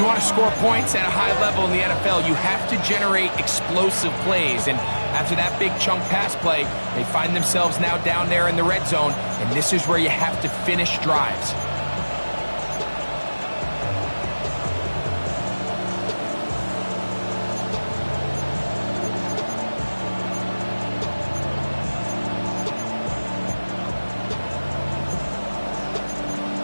want to score points at a high level in the NFL, you have to generate explosive plays. And after that big chunk pass play, they find themselves now down there in the red zone, and this is where you have to finish drives.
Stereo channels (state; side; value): inverted; both; correlation -1.00